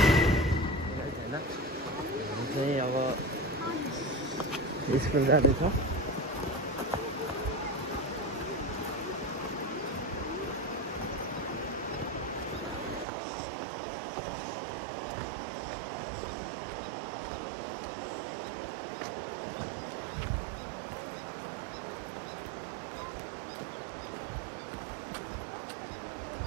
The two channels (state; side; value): drops out; left; at 13.1 s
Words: चाहिँ अब स्कुल जाँदैछ।